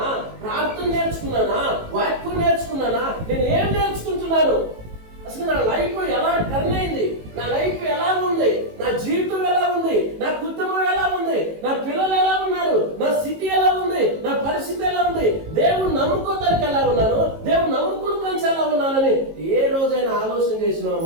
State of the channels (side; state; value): left; late; 18 ms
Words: ప్రార్థన నేర్చుకున్నానా, వాక్యం నేర్చుకున్నానా, నేను ఏం నేర్చుకుంటున్నాను? అసలు నా లైఫ్ ఎలా టర్న్ అయింది, నా లైఫ్ ఎలా ఉంది, నా జీవితం ఎలా ఉంది, నా కుటుంబం ఎలా ఉంది, నా పిల్లలు ఎలా ఉన్నారు, నా స్థితి ఎలా ఉంది, నా పరిస్థితి ఎలా ఉంది, దేవుడు నమ్ముకోదానికి ఎలా ఉన్నాను, దేవుడు నమ్ముకుని ఎలా ఉన్నానని ఏ రోజైనా ఆలోచన చేసినావా